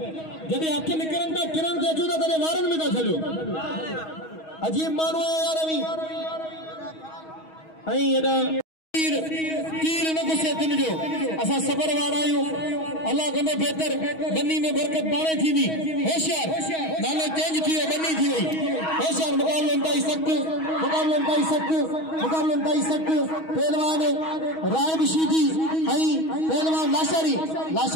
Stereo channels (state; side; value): late; right; 6.3 ms